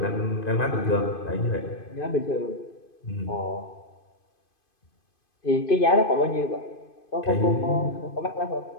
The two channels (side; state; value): right; late; 2.5 ms